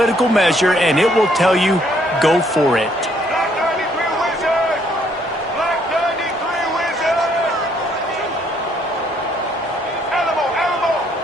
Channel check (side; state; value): both; normal; correlation 0.67